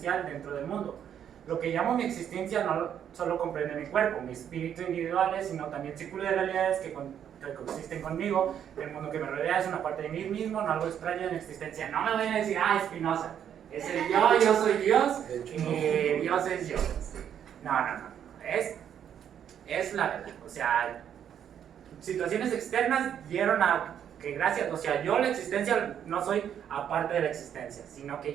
dentro del mundo. Lo que llamo mi existencia no solo comprende mi cuerpo, mi espíritu individuales, sino también círculo de realidades que coexisten conmigo. El mundo que me rodea es una parte de mí mismo, no algo extraño de mi existencia. No me vayan a decir, Spinoza, es el yo soy Dios y Dios es yo. No. Es la verdad. O sea, situaciones externas dieron a que gracias, o sea, yo la existencia no soy aparte de la existencia, sino que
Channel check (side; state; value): left; quieter; 9.2 dB